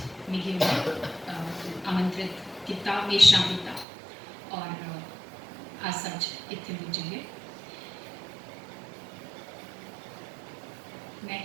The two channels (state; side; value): drops out; left; at 3.9 s